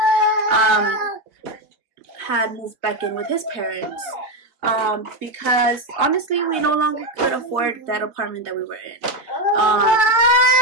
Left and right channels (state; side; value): late; left; 3.3 ms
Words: had moved back in with his parents, because honestly we no longer could afford that apartment that we were in.